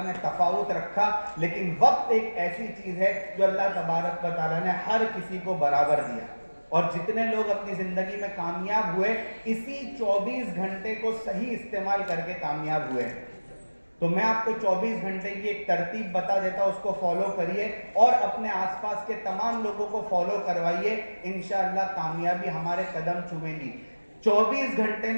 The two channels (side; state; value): both; inverted; correlation -1.00